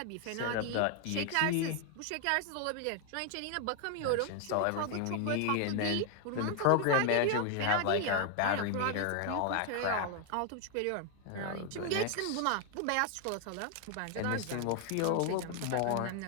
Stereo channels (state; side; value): different; both; correlation 0.01